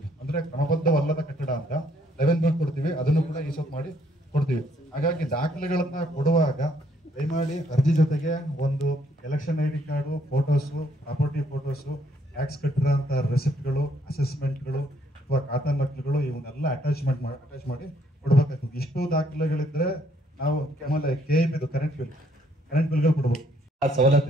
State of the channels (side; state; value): both; normal; correlation 0.68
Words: ಅಂದ್ರೆ ಕ್ರಮಬದ್ಧವಲ್ಲದ ಕಟ್ಟಡ ಅಂತ 11B ಕೊಡ್ತೀವಿ. ಅದನ್ನು ಕೂಡ ಈ ಸ್ವತ್ತು ಮಾಡಿ ಕೊಡ್ತೀವಿ. ಹಾಗಾಗಿ ದಾಖಲೆಗಳನ್ನ ಕೊಡುವಾಗ ದಯಮಾಡಿ ಅರ್ಜಿ ಜೊತೆಗೆ ಒಂದು election ID card, photos, property photos, tax ಕಟ್ಟಿರೋ ಅಂತ ರೆಸಿಪ್ಟ್ಗಳು, ಅಸೆಸ್ಮೆಂಟ್ಗಳು ಅಥವಾ ಖಾತಾ ನಕಲುಗಳು ಇವನ್ನೆಲ್ಲ ಅಟ್ಯಾಚ್ ಮಾಡಿ ಕೊಡ್ಬೇಕಾಗ್ತದೆ. ಇಷ್ಟು ದಾಖಲೆಗಳಿದ್ರೆ ನಾವು ಆಮೇಲೆ KIB ಕರೆಂಟ್ ಬಿಲ್ಗಳು ಕೊಡ್ಬೇಕು.